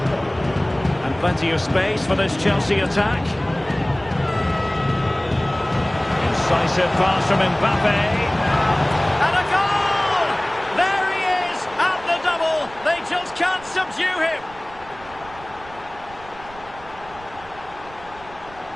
And plenty of space for this Chelsea attack. Incisive pass from Mbappe. And a goal! There he is at the double. They just can't subdue him.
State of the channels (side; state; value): right; noise; rumble, 21 dB below the sound